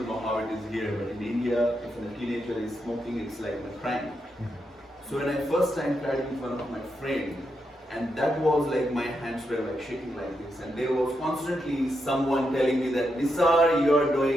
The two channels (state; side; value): normal; both; correlation 0.83